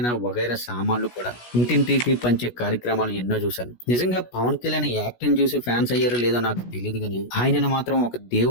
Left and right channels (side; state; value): right; late; 16 ms